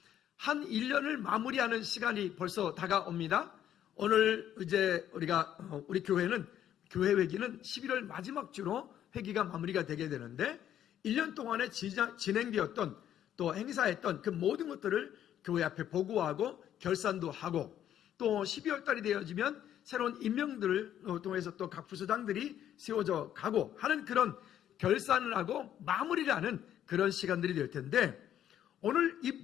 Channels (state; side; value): quieter; right; 10.7 dB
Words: 한 1년을 마무리하는 시간이 벌써 다가옵니다. 오늘 이제 우리 교회는 교회 회기는 11월 마지막 주로 회기가 마무리가 되게 되는데 1년 동안에 진행되었던 또 행사했던 그 모든 것들을 교회 앞에 보고하고 결산도 하고 또 12월 달이 되어지면 새로운 임명들을 통해서 또 각 부서장들이 세워져 가고 하는 그런 결산을 하고 마무리를 하는 그런 시간들이 될 텐데 오늘 이